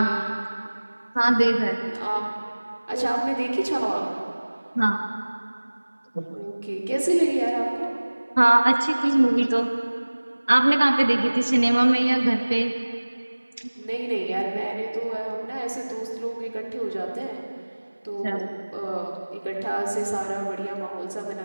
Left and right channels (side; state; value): both; inverted; correlation -1.00